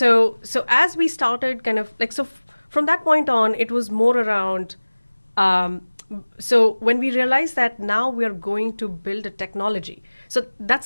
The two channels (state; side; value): inverted; both; correlation -1.00